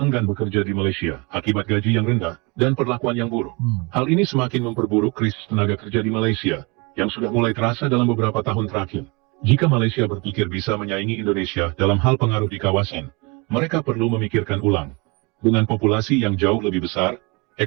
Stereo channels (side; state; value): left; quieter; 28.0 dB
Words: bekerja di Malaysia akibat gaji yang rendah dan perlakuan yang buruk. Hal ini semakin memperburuk krisis tenaga kerja di Malaysia yang sudah mulai terasa dalam beberapa tahun terakhir. Jika Malaysia berpikir bisa menyaingi Indonesia dalam hal pengaruh di kawasan, mereka perlu memikirkan ulang. Dengan populasi yang jauh lebih besar,